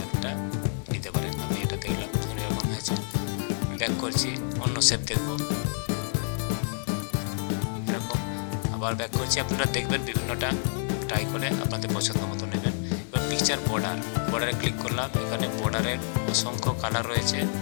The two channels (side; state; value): right; silent; digital silence